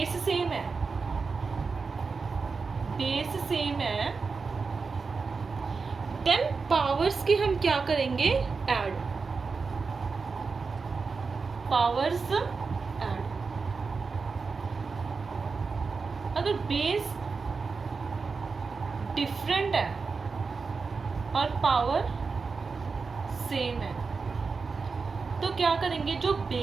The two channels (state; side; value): quieter; left; 4.7 dB